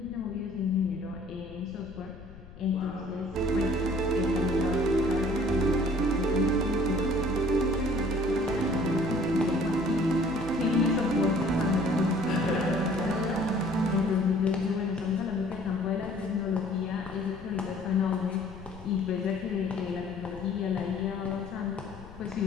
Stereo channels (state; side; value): noise; left; rumble, 17 dB below the sound